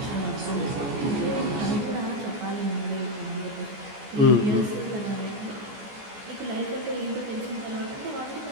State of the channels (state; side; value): late; left; 14 ms